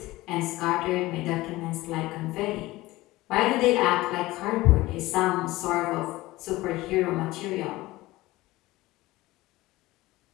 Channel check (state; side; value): quieter; right; 18.7 dB